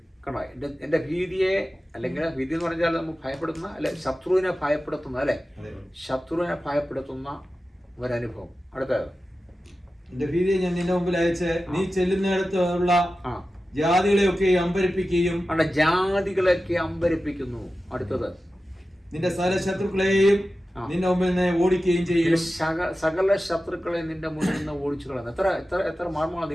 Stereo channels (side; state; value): both; normal; correlation 0.94